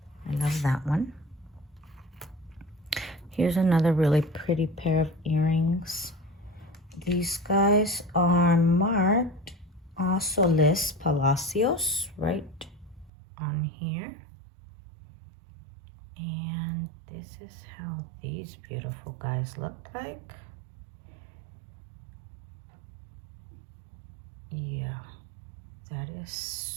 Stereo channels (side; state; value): left; drops out; at 13.1 s